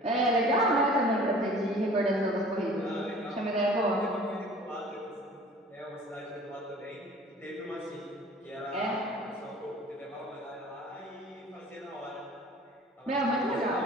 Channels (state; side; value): normal; both; correlation 0.47